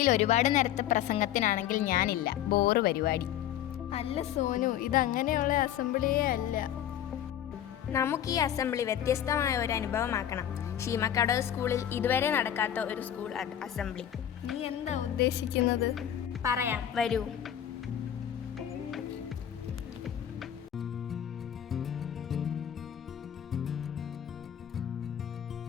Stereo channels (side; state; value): right; quieter; 10.6 dB